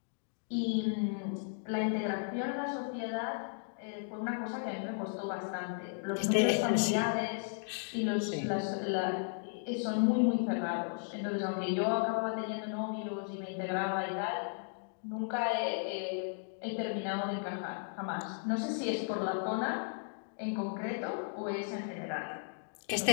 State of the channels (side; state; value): right; silent; digital silence